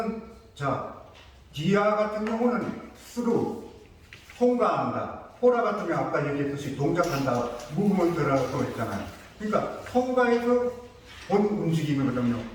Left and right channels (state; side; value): identical; both; correlation 1.00